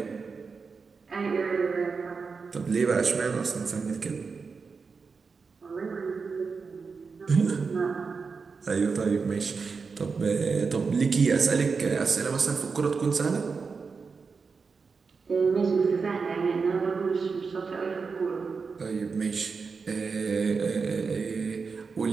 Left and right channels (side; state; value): left; quieter; 5.0 dB